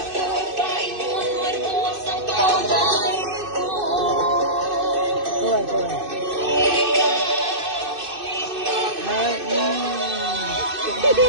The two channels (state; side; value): late; left; 2.6 ms